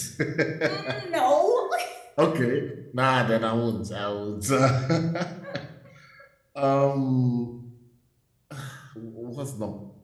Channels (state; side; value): identical; both; correlation 1.00